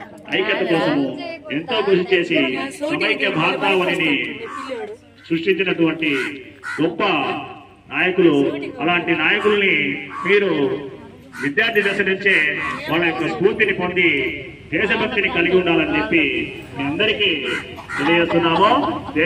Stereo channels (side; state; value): both; identical; correlation 1.00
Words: ఐక్యత కోసము ఎంతో కృషి చేసి సమైక్య భారతావనిని సృష్టించినటువంటి గొప్ప నాయకులు. అలాంటి నాయకుల్ని మీరు విద్యార్థి దశ నుంచే వాళ్ళ యొక్క స్ఫూర్తిని పొంది దేశభక్తిని కలిగి ఉండాలని చెప్పి మీ అందరికీ తెలియజేస్తున్నాము.